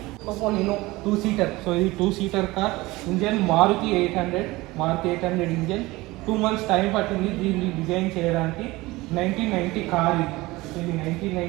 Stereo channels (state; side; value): quieter; left; 20.5 dB